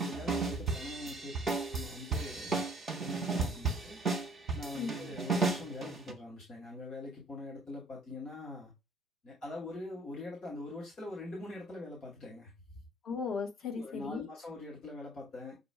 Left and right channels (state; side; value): normal; both; correlation 0.55